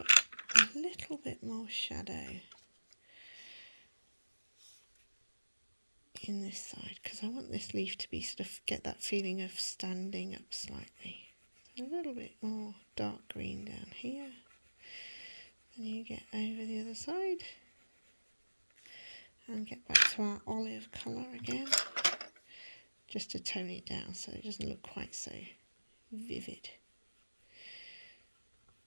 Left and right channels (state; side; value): inverted; both; correlation -1.00